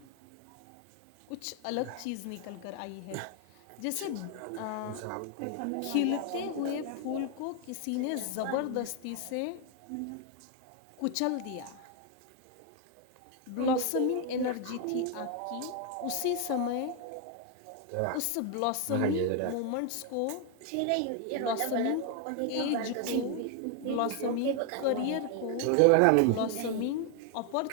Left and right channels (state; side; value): different; both; correlation 0.01